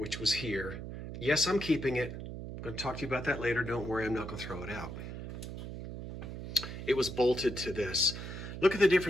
was here. Yes, I'm keeping it. I'm going to talk to you about that later. Don't worry, I'm not going to throw it out. It was bolted to this. Look at the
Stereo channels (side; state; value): right; noise; hum, 8 dB below the sound